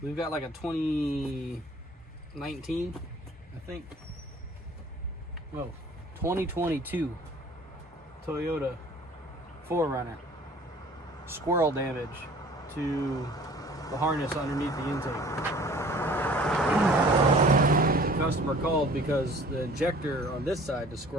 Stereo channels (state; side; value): normal; both; correlation 0.50